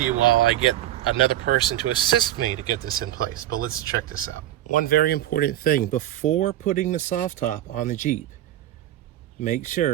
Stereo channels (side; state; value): left; quieter; 13.0 dB